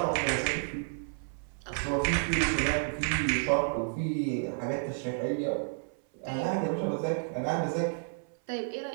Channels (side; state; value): left; silent; 57 dB below the other